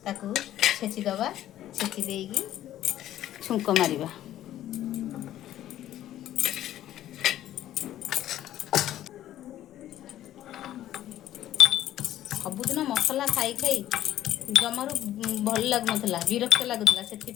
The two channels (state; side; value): quieter; right; 12.7 dB